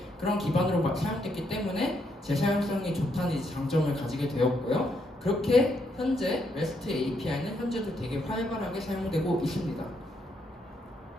그런 기반으로 사용됐기 때문에 재사용성이 좋다는 이제 장점을 가지게 되었고요. 그렇게 현재 REST API는 현재도 되게 활발하게 사용되고 있습니다.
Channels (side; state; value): both; normal; correlation 0.76